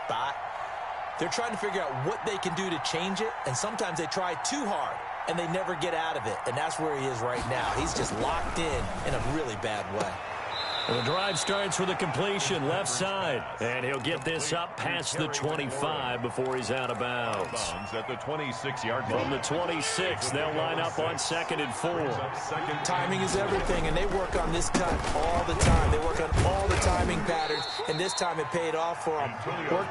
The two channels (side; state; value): both; identical; correlation 1.00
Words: they're trying to figure out what they can do to change it, and sometimes they try too hard, and they never get out of it. And that's where he is right now. He's just locked in a really bad way. The drive starts with a completion left side, and he'll get this up past the 25 before he's out of bounds. At the 26-yard line. From the 26, they'll line up on 2nd and 4. Timing is everything, and they work on this cut all the time. They work on all the timing patterns, and this time it paid off for them.